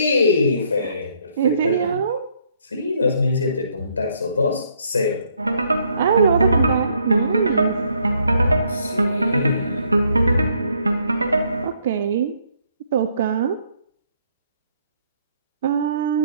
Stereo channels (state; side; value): inverted; both; correlation -0.69